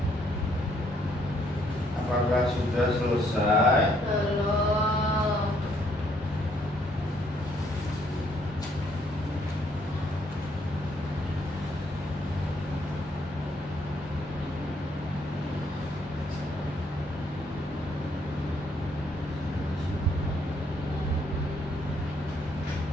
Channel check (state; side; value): normal; both; correlation 0.69